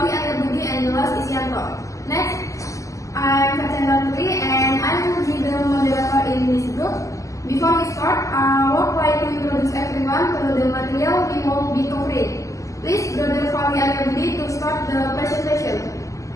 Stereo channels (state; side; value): late; right; 0.16 ms